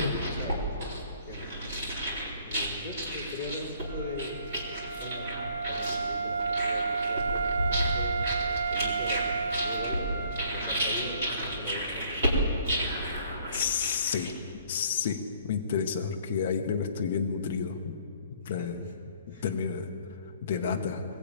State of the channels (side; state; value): both; inverted; correlation -0.60